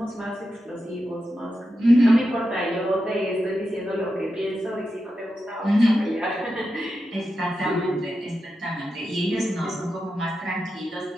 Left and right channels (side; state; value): both; normal; correlation 0.89